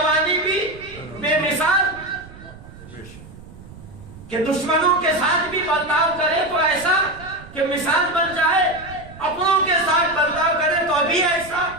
بھی بے مثال، کہ دشمنوں کے ساتھ بھی برتاؤ کرے تو ایسا کہ مثال بن جائے، اپنوں کے ساتھ برتاؤ کرے تو ابھی ایسا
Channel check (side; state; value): right; noise; rumble, 18 dB below the sound